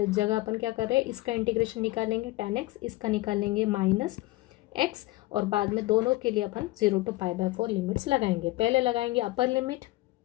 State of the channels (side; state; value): right; quieter; 19.2 dB